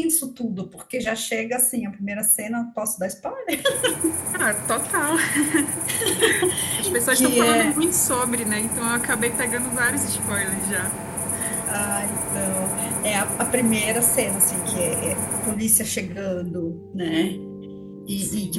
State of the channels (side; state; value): both; identical; correlation 1.00